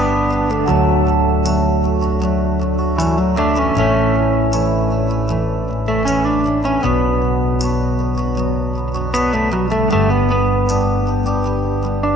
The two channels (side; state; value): both; normal; correlation 0.65